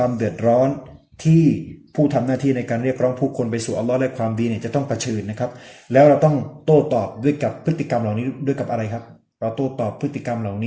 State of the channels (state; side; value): identical; both; correlation 1.00